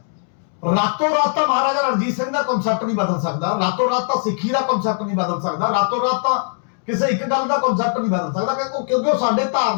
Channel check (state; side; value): silent; right; 66 dB below the other